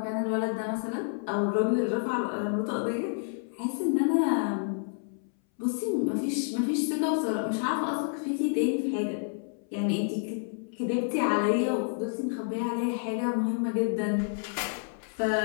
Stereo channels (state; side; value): silent; right; 58 dB below the other